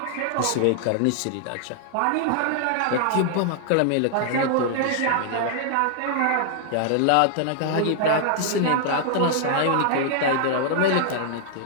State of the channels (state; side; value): different; both; correlation -0.01